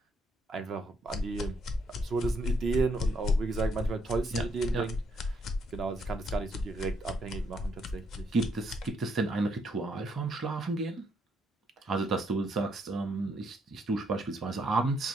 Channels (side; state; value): both; normal; correlation 0.73